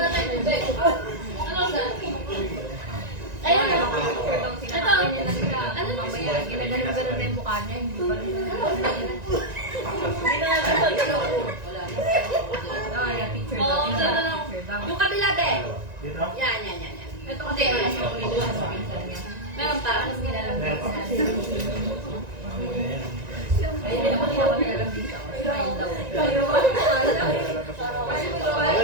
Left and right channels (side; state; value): left; late; 1.9 ms